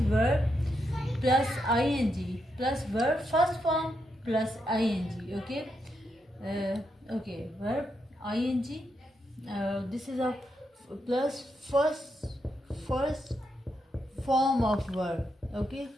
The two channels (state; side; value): normal; both; correlation 0.82